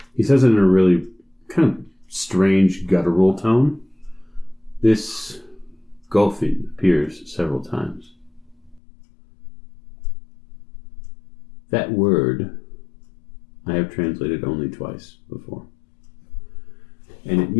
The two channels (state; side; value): drops out; right; at 8.8 s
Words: he says it in a really kind of strange guttural tone. This Golfin appears several times. That word I have translated only twice before. And it